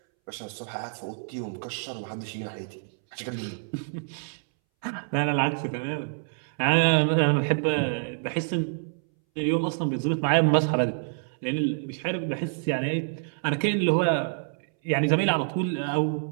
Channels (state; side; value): silent; left; 60 dB below the other